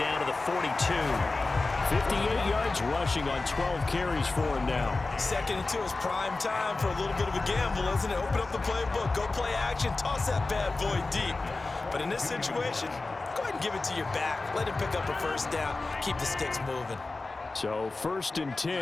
to the 42. 58 yards rushing on 12 carries for him now. 2nd and 2 is prime time for a little bit of a gamble, isn't it? Open up the playbook, go play action, toss that bad boy deep. But in this situation, go ahead and give it to your back. Let him pick up a 1st down, keep the sticks moving. So 1st and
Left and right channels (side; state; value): right; quieter; 3.4 dB